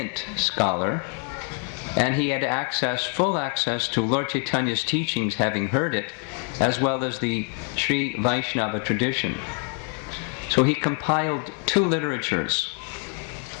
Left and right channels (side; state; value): right; quieter; 38.8 dB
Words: scholar, and he had full access to Lord Chaitanya's teachings, having heard it, as well as the Sri Vaishnava tradition. So he compiled 2 literatures.